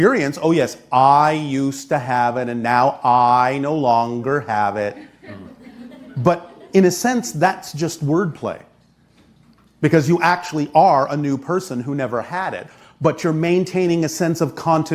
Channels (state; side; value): identical; both; correlation 1.00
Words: Oh, yes, I used to have it and now I no longer have it. But in a sense, that's just wordplay. Because you actually are a new person who never had it. But you're maintaining a sense of